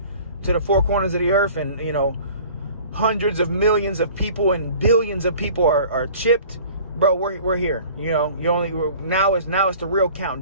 to the four corners of the earth, and, you know, hundreds of millions of people and billions of people are chipped, bro, we're here. You know, now it's the real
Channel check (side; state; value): both; inverted; correlation -0.46